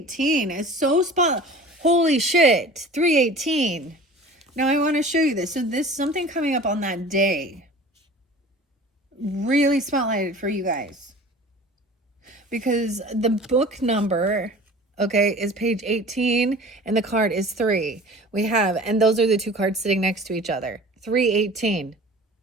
is so spot. Holy shit, 318. Now, I want to show you this. So, this something coming up on that day. Really spotlighted for you guys. Because the book number, okay, is page 18 and the card is 3. We have, and those are the two cards sitting next to each other. 318.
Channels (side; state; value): both; normal; correlation 0.42